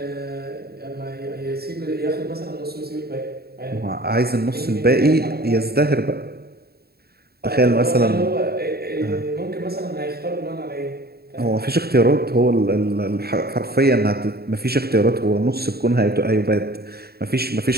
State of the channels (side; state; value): left; late; 0.46 ms